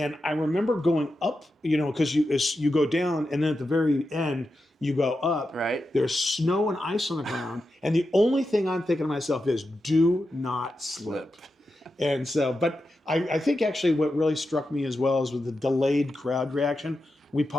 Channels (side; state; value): both; normal; correlation 0.89